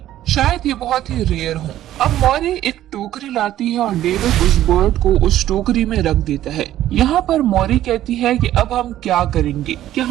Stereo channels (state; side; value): quieter; left; 13.0 dB